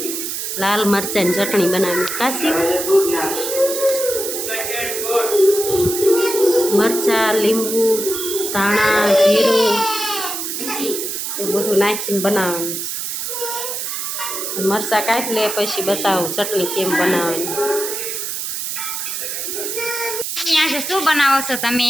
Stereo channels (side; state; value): right; noise; hiss, 4 dB below the sound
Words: લાલ મરચાંની ચટણી બનાવવાની. કાશી મરચાં, લીંબુ, ધાણા, જીરું એ બધું નાખીને બનાવવાનું છે. મરચાં કાપી લે પછી બતાવું ચટણી કેમ બનાવવાની. આજે શું બનાવો છો તમે?